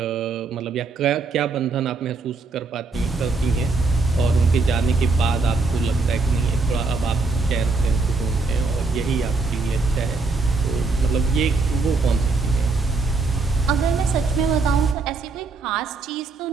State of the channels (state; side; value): quieter; left; 3.8 dB